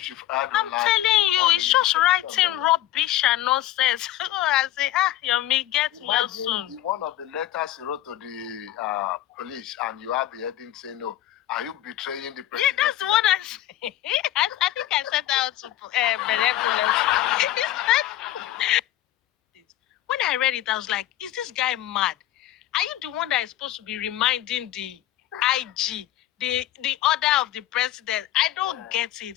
you've heard. I'm telling you, it's just writing rubbish and nonsense. I say, Yomi, get well soon. One of the letters he wrote to the police, and you have the heading saying, no, are you betraying the president? Yeah, that's what I say. I think I said that to benevolence. When I read it, I was like, is this guy mad? Are you the one that is supposed to be reminding the IG, the order of the president? I don't get it.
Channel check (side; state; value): right; quieter; 13.8 dB